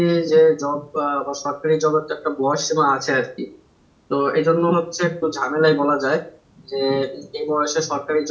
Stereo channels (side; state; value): both; identical; correlation 1.00